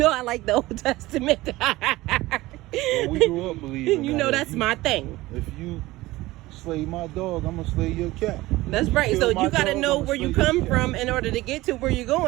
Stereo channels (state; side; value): quieter; left; 18.6 dB